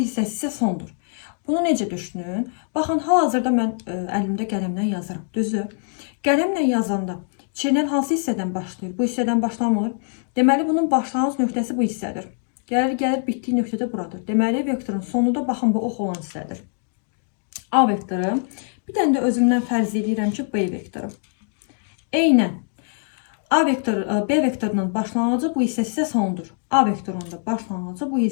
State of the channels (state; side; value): silent; right; 62 dB below the other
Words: isə sondur. Bunu necə düşünün? Baxın, hal-hazırda mən əlimdə qələmlə yazıram. Düzü, qələmlə yazanda çeynən hansı hissədən başlayır? Bu hissədən başlamır. Deməli, bunun başlanğıc nöqtəsi bu hissədir. Gəlir, bitdiyi nöqtə də buradır. Deməli, vektorun sonu da baxın, bu ox olan hissədir. A vektoru. Bir dənə də özümdən fərz edirəm ki, B vektoru. Eynən. B vektorunun başlanğıcı bu hissəsi isə sondur. A vektorunun da başlanğıcı bu